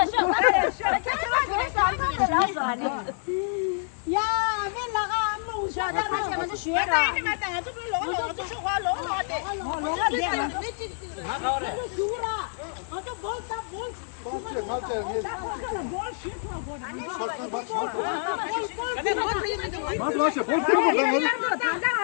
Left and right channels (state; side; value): silent; right; digital silence